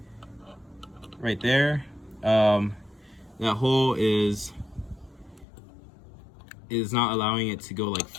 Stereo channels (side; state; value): right; drops out; at 5.5 s